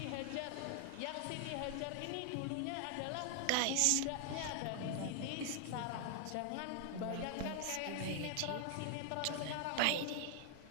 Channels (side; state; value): both; different; correlation 0.00